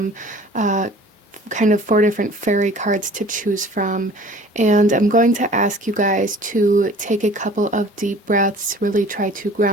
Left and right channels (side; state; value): both; normal; correlation 0.47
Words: kind of 4 different fairy cards to choose from, and I'm going to ask you guys to take a couple of deep breaths, really try to